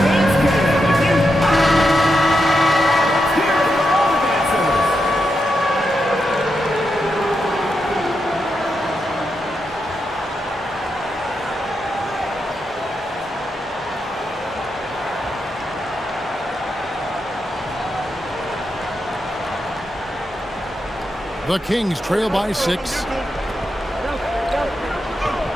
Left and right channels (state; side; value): normal; both; correlation 0.85